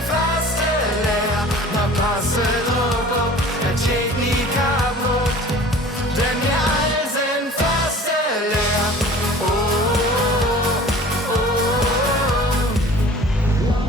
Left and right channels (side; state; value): both; normal; correlation 0.45